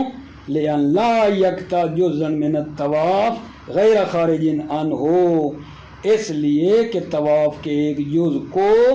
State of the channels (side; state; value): both; identical; correlation 1.00